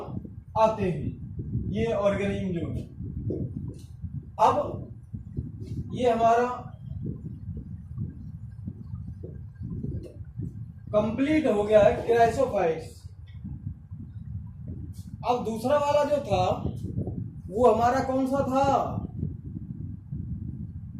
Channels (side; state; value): both; identical; correlation 1.00